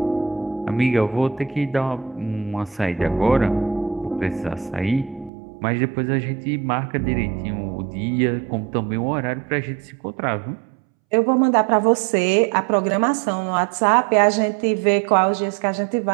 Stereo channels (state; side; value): drops out; left; at 5.3 s